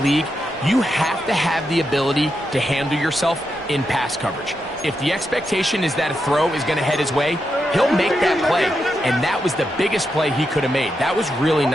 you have to have the ability to handle yourself in pass coverage. If the expectation is that a throw is going to head his way, he'll make that play. And that was the biggest play he could have made. That was really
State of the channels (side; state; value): both; normal; correlation 0.85